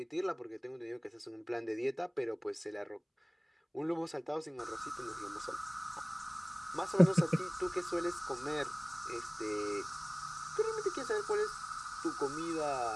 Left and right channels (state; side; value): identical; both; correlation 1.00